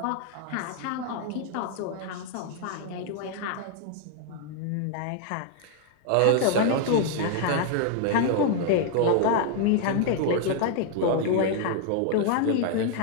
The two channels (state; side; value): different; both; correlation 0.00